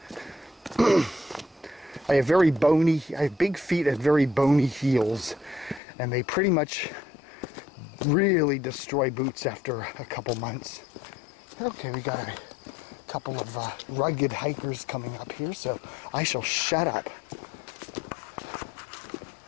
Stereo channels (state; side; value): drops out; right; at 5.8 s